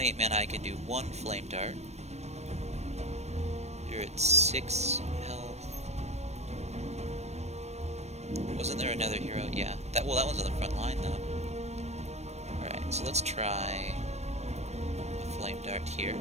mana I can do 1 Flame Dart. You're at 6 health. Wasn't there another hero? Yeah. That one's on the front line though. Alright, so let's try a Flame Dart here.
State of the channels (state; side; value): late; left; 0.32 ms